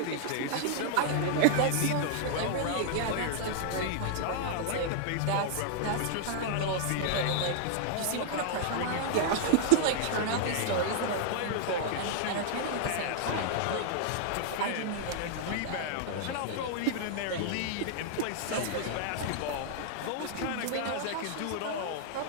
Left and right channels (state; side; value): different; both; correlation -0.01